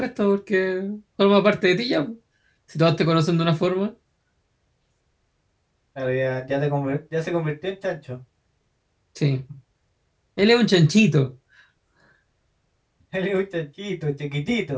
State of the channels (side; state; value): both; identical; correlation 1.00